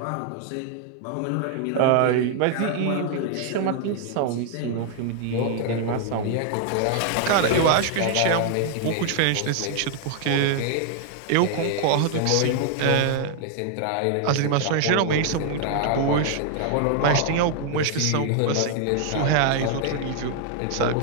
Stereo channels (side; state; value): both; different; correlation 0.00